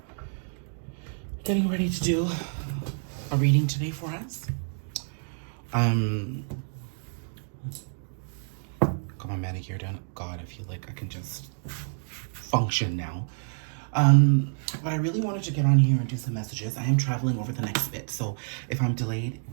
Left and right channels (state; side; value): silent; left; 59 dB below the other